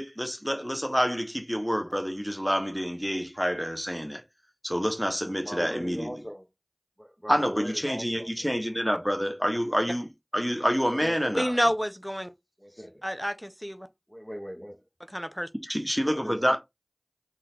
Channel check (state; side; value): identical; both; correlation 1.00